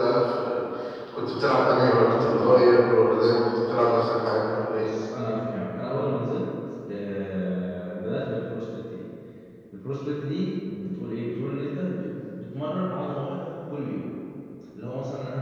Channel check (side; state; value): both; identical; correlation 1.00